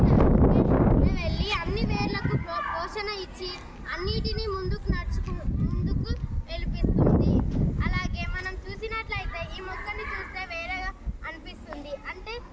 వెళ్ళి అన్ని వేర్లకు పోషణ ఇచ్చి అన్నిటినీ ముందుకు వెలిపిస్తుంది. అలాగే మనం చూసినట్లయితే ఈ మొక్కని చూస్తే వేరేగా అనిపిస్తుంది. అంటే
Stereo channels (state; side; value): identical; both; correlation 1.00